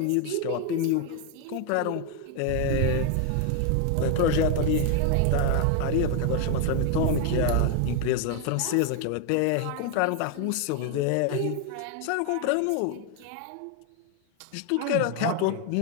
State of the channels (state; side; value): different; both; correlation 0.01